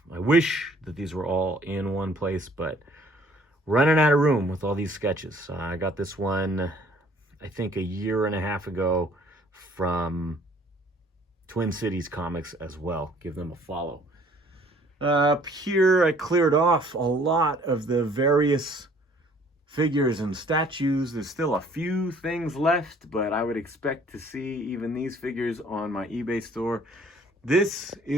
I wish that these were all in one place, but running out of room with all these sketches. I got this one, I think, a year and a half ago from Twin Cities Comics as well. Give them a follow. Up here, I cleared off a lot of the various figures and statues. There's still a few things left, but I would expect to see even these figures on my eBay store. This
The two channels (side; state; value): both; normal; correlation 0.57